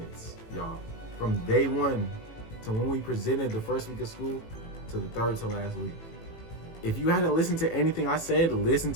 y'all. From day 1 to when we presented the first week of school to the 3rd to last week. If you hadn't listened to anything I said, listen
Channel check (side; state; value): right; late; 18 ms